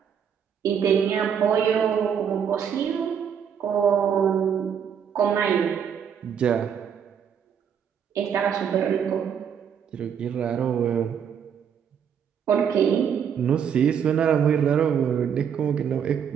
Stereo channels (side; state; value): left; quieter; 7.8 dB